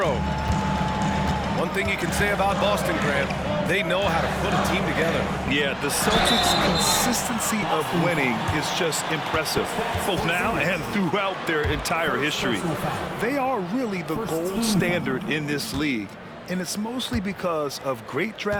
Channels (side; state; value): both; identical; correlation 1.00